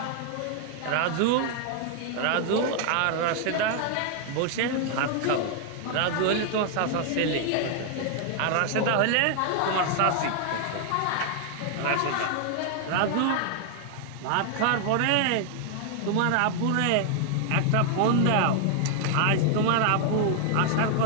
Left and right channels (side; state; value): both; different; correlation 0.00